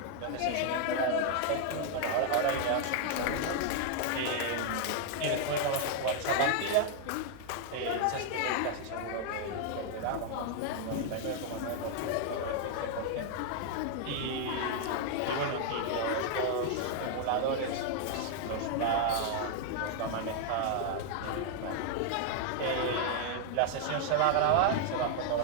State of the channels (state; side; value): different; both; correlation 0.00